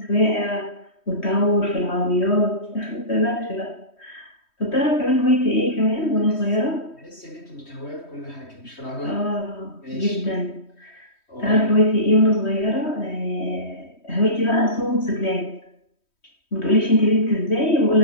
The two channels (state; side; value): late; right; 3.1 ms